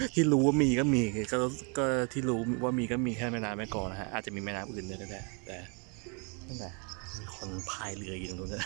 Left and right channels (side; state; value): left; quieter; 35.6 dB